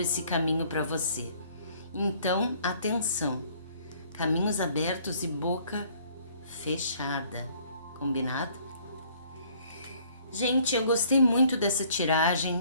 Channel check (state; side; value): inverted; both; correlation -0.59